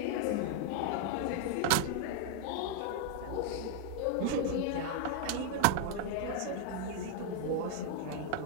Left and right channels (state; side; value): different; both; correlation 0.00